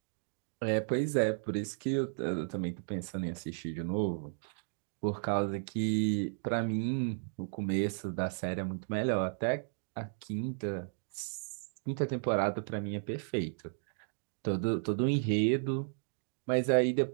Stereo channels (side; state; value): left; silent; digital silence